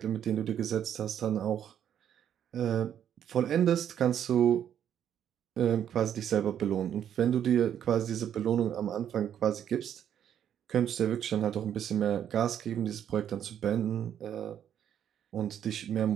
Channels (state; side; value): quieter; left; 9.6 dB